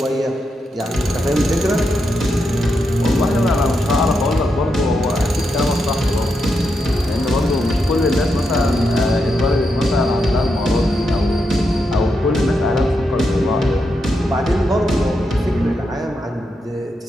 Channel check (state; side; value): normal; both; correlation 0.84